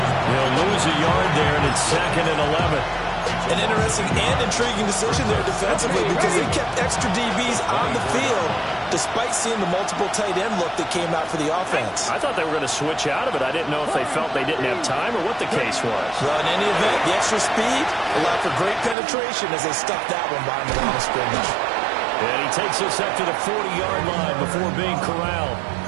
He'll lose a yard there, and it's 2nd and 11. An interesting and intriguing decision there defensively because they kept extra DBs on the field despite seeing the multiple tight end look that came out for the offense. I thought they were going to switch out of it. I didn't know if they felt they didn't have time or what the case was. Well, in any event, the extra speed allowed for great penetration as they stuck that one behind the line of scrimmage. And he takes us up to the 40-yard line before being corralled.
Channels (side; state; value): left; drops out; at 18.9 s